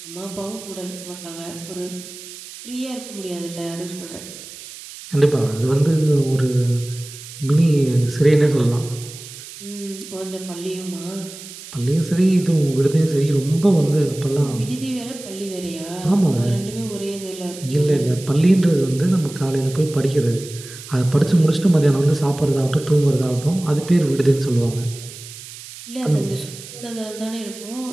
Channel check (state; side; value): noise; right; hiss, 15 dB below the sound